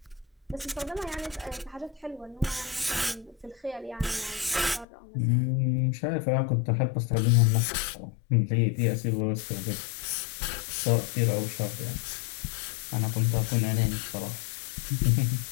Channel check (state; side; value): drops out; right; at 4.9 s